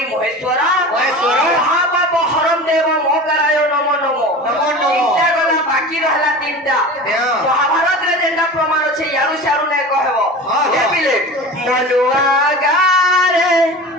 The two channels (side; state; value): both; normal; correlation 0.34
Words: महेश्वर महापाप हरम देव मोकराय नमो नमो तीनटा गला बाकी रहला तीनटा महाभारत रे जेंटा प्रमाण छै यारु सारु नै कहबो हे पिले मनुआ गारे